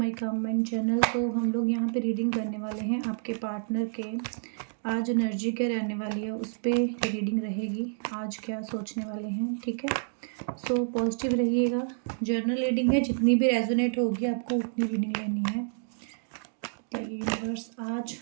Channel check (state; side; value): silent; left; digital silence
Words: comment channel. तो हम लोग यहाँ पे रीडिंग करने वाले हैं आपके पार्टनर के। आज एनर्जी क्या रहने वाली है उस पे रीडिंग रहेगी। आज क्या सोचने वाले हैं, ठीक है। सो पॉजिटिव रहिएगा। जर्नल रीडिंग है, जितनी भी रेजोनेट होगी आपको उतनी रीडिंग लेनी है। बताइए यूनिवर्स, आज